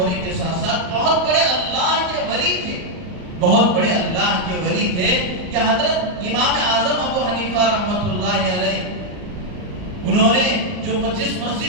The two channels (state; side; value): late; left; 39 ms